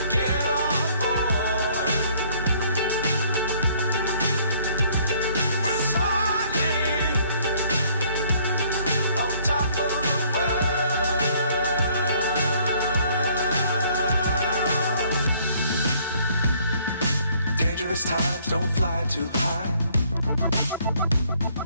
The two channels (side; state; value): both; inverted; correlation -0.61